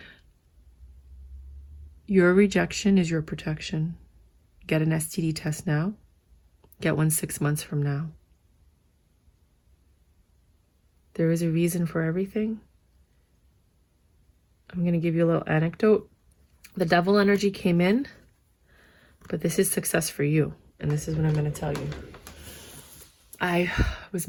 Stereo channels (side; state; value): both; identical; correlation 1.00